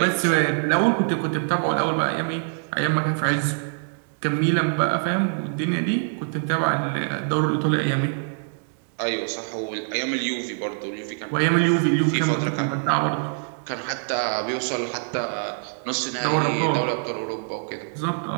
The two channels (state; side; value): silent; left; digital silence